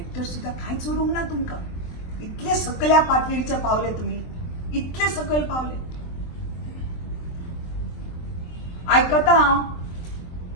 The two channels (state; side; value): late; right; 23 ms